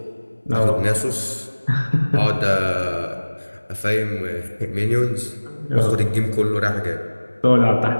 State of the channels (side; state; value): both; inverted; correlation -1.00